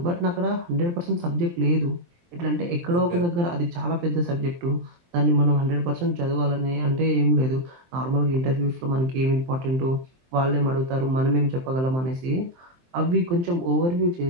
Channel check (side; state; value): left; late; 23 ms